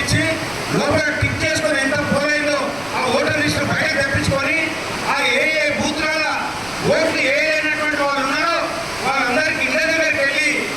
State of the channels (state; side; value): noise; right; rumble, 22 dB below the sound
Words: లోపల టిక్ చేసుకొని ఎంత పోల్ అయిందో ఆ ఓటర్ లిస్ట్ బయట తెప్పించుకొని ఆ ఏ బూత్ల ఓట్లు అయినటువంటి వాళ్ళు ఉన్నారో వాళ్ళందరికీ ఇళ్ళ దగ్గరికి వెళ్ళి